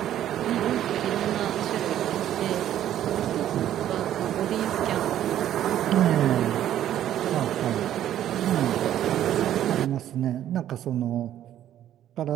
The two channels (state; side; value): quieter; left; 11.6 dB